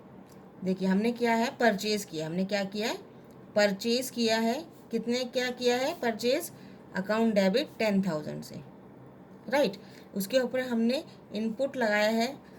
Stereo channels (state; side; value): identical; both; correlation 1.00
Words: देखिए हमने क्या है, परचेज किया, हमने क्या किया है, परचेज किया है, कितने क्या किया है परचेज, अकाउंट डेबिट 10,000 से। राइट, उसके ऊपर हमने इनपुट लगाया है